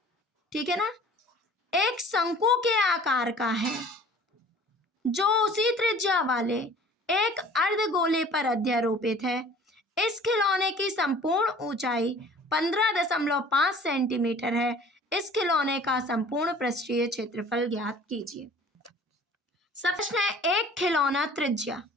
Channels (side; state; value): both; normal; correlation 0.48